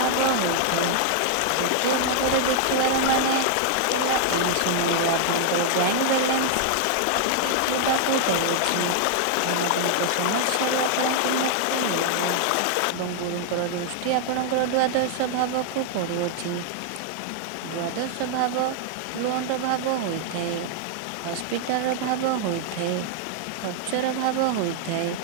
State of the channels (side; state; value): both; different; correlation 0.00